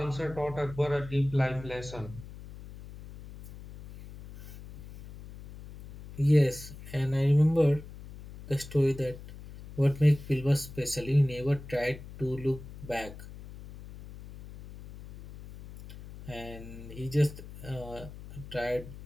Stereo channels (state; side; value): noise; left; hum, 15 dB below the sound